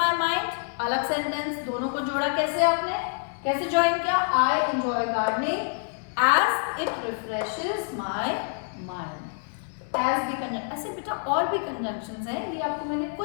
mind. अलग सेंटेंस. दोनों को जोड़ा कैसे आपने? कैसे ज्वाइन किया? I enjoy gardening as it refreshes my mind. As भी कंजंक्शन. ऐसे बेटा और भी कंजंक्शंस हैं. ये आपको मैंने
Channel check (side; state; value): right; silent; 60 dB below the other